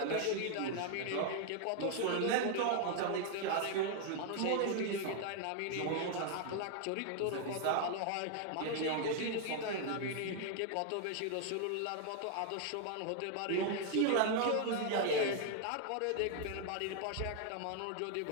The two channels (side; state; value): both; different; correlation 0.00